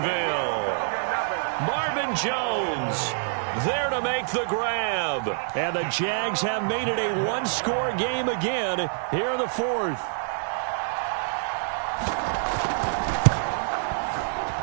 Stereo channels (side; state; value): left; silent; digital silence